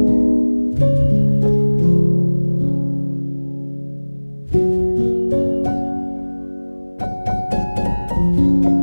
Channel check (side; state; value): both; inverted; correlation -1.00